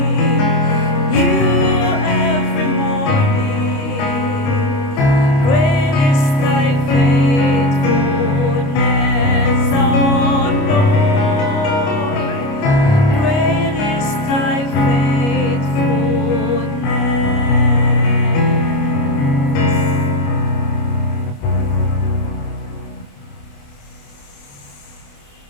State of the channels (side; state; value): right; late; 29 ms